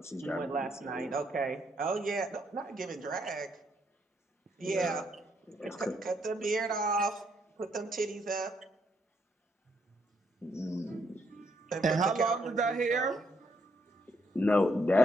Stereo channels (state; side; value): normal; both; correlation 0.74